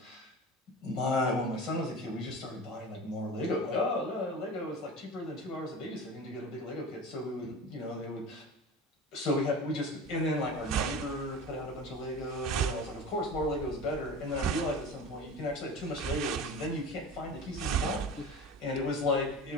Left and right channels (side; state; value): both; normal; correlation 0.33